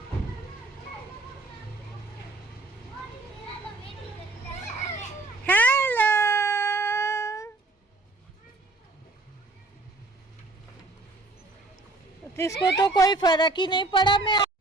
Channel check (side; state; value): left; quieter; 3.1 dB